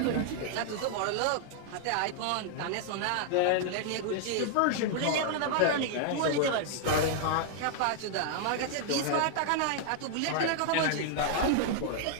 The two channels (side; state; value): both; different; correlation 0.00